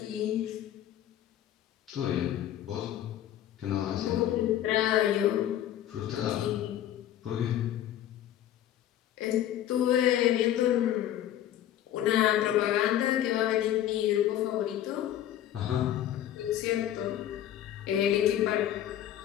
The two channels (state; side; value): quieter; right; 11.8 dB